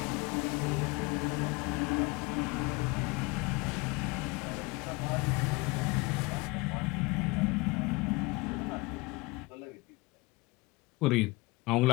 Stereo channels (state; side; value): quieter; right; 24.4 dB